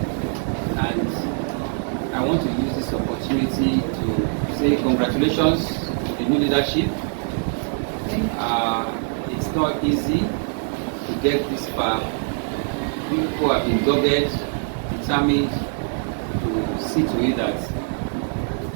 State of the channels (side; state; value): left; silent; 57 dB below the other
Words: And I want to use this opportunity to say congratulations to the new leadership. It's not easy to get this far. People have been dogged, determined to see to it that